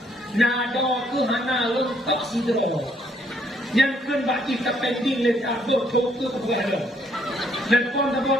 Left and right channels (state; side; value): normal; both; correlation 0.68